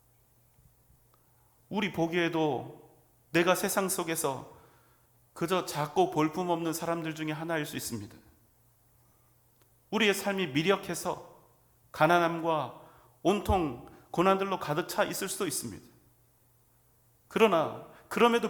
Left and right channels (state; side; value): identical; both; correlation 1.00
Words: 우리 보기에도 내가 세상 속에서 그저 작고 볼품없는 사람들 중에 하나일 수 있습니다. 우리의 삶이 미력해서 가난함과 온통 고난들로 가득 차 있을 수도 있습니다. 그러나 그럼에도